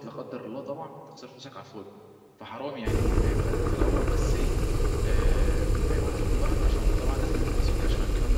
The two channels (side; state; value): both; identical; correlation 1.00